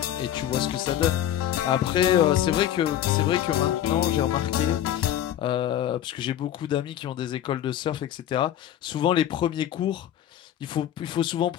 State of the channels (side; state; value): right; quieter; 11.3 dB